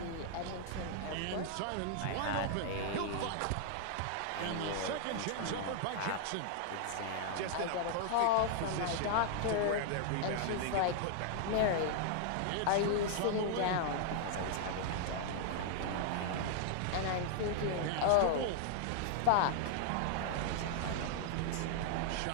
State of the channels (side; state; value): both; different; correlation -0.01